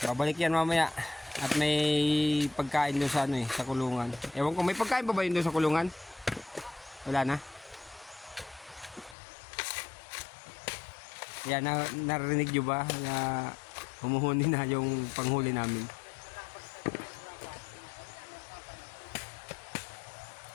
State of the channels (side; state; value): right; drops out; at 9.2 s